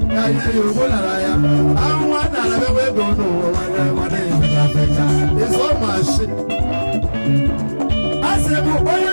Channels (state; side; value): inverted; both; correlation -1.00